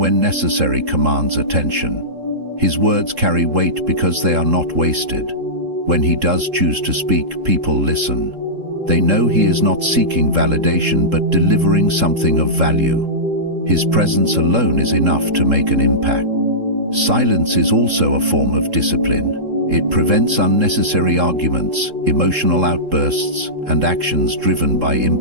necessary commands attention. His words carry weight because they are not wasted. When he does choose to speak, people listen. They know he is not seeking validation but delivering something of value. His presence alone is enough to make an impact. Silence is also a form of discipline. It prevents unnecessary arguments, emotional outbursts, and actions driven by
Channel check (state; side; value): late; left; 3.7 ms